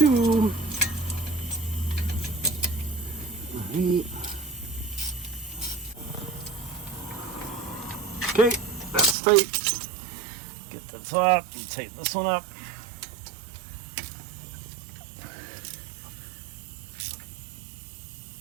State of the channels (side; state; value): left; drops out; at 9.2 s